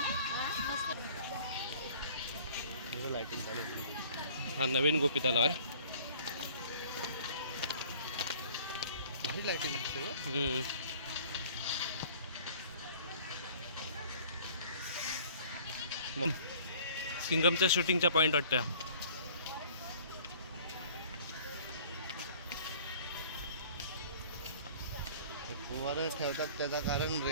हा नवीन गोपी तलाव आहे. भारी लाईटिंग दिसते. सिंगमच्या शूटिंगचा पॉईंट वाटतं. वर ठेवतात त्याचं कारण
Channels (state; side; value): inverted; both; correlation -0.50